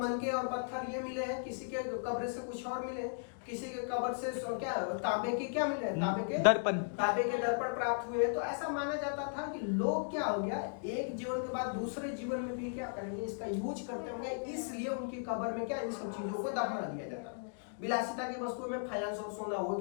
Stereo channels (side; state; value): right; silent; digital silence